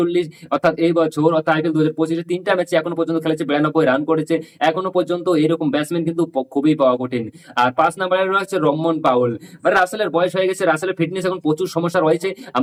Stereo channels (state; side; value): identical; both; correlation 1.00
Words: অর্থাৎ এই বছর অর্থাৎ আইপিএল 2025-এ 3টা ম্যাচে এখনো পর্যন্ত খেলেছে, 92 রান করেছে। এখনো পর্যন্ত এরকম ব্যাটসম্যান কিন্তু খুবই পাওয়া কঠিন। আর 5 নম্বরে রয়েছে রহমান পাউল। মানে রাসেলের বয়স হয়ে গেছে, রাসেলের ফিটনেস এখন প্রচুর সমস্যা রয়েছে।